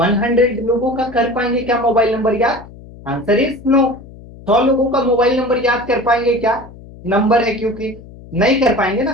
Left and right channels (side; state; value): left; noise; hum, 19 dB below the sound